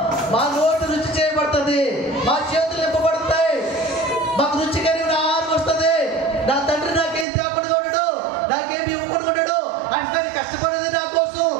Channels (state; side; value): drops out; left; at 7.2 s